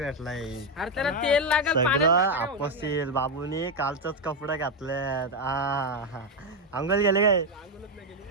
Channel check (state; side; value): normal; both; correlation 0.06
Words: सगळं आपसील बाबूनी कालचंच कपडे घातलेत अंगल गेले काय